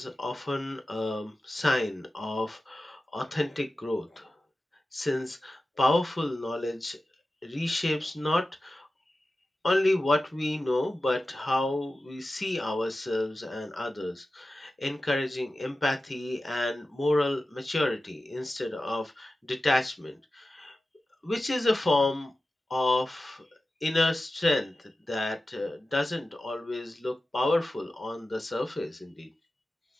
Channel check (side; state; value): both; normal; correlation 0.94